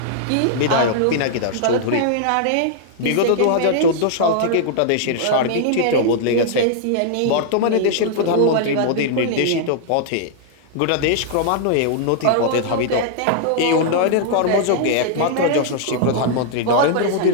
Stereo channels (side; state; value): both; different; correlation -0.01